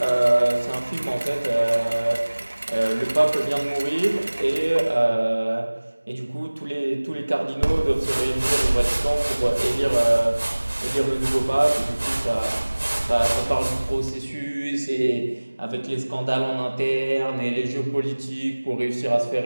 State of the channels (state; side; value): inverted; both; correlation -1.00